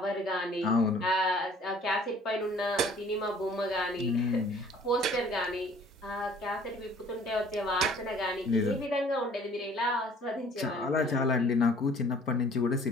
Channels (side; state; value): both; normal; correlation 0.54